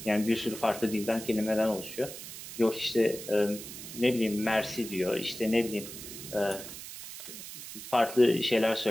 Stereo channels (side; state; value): right; noise; hiss, 11 dB below the sound